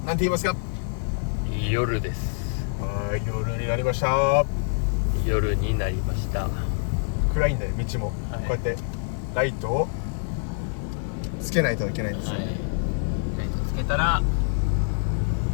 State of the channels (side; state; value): right; silent; digital silence